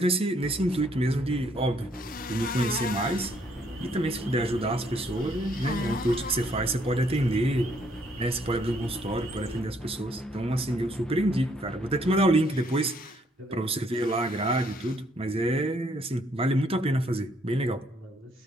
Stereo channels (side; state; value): both; normal; correlation 0.68